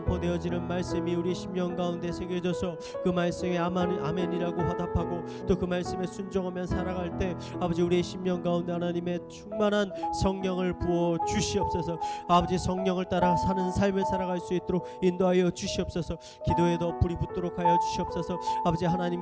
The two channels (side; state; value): both; identical; correlation 1.00